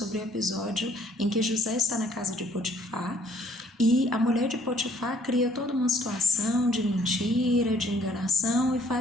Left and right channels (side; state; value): both; normal; correlation 0.61